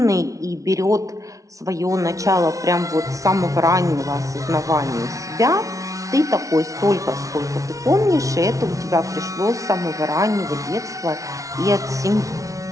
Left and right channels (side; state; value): left; late; 0.16 ms